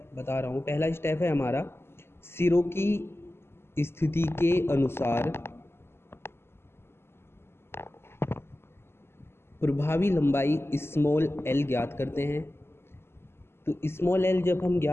बता रहा हूँ। पहला स्टेप है हमारा सिरों की स्थिति के अनुसार प्रभावी लंबाई स्मॉल एल ज्ञात करते हैं। तो स्मॉल एल जब हम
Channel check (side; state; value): right; late; 0.12 ms